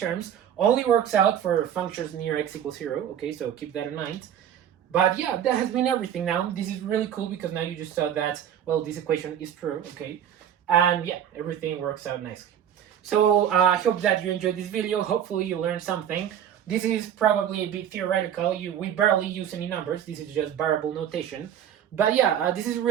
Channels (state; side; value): quieter; left; 9.6 dB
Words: only works out for functions near x equals 0, okay? So keep that in mind. But yeah, that has been everything now. This is really cool because now you just saw that, well, this equation is true, okay? And yeah, everything works out nicely. So I hope that you enjoyed this video. Hopefully you learned something. This is probably a bit theoretical. We barely use any numbers. This is just variable notation. But yeah, this is